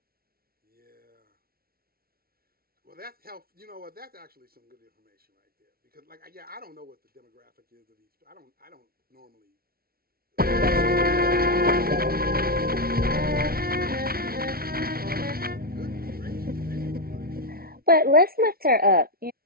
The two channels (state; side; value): late; left; 0.44 ms